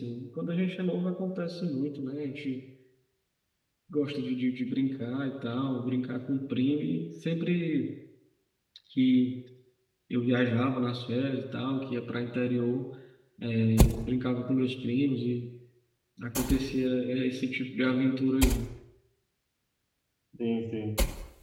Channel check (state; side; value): identical; both; correlation 1.00